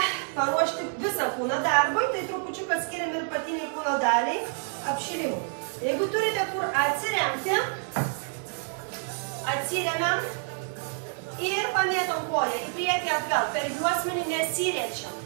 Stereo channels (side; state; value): left; silent; 58 dB below the other